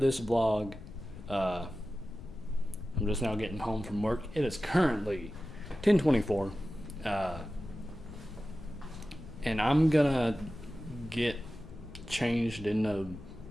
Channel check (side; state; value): left; noise; rumble, 15 dB below the sound